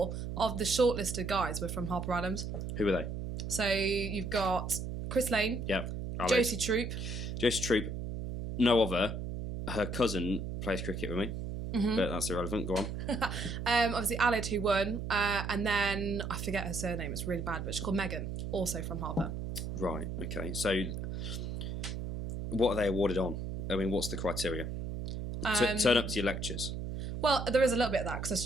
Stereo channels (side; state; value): right; noise; hum, 5 dB below the sound